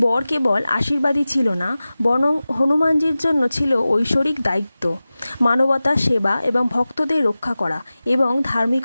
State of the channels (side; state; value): both; inverted; correlation -0.96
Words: কেবল আশীর্বাদই ছিল না, বরং হনুমানজির জন্য ছিল ঐশ্বরিক দায়িত্ব, মানবতা সেবা এবং ভক্তদের রক্ষা করা এবং